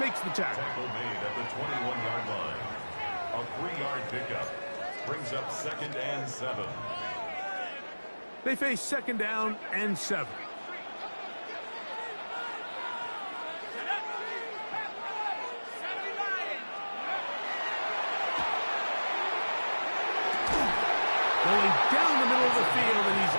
the tackle. Tackle made at the 21-yard line. A 3-yard pickup brings up second and 7. They face second down and 7. Going down the middle of the field, and he's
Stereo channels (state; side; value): inverted; both; correlation -1.00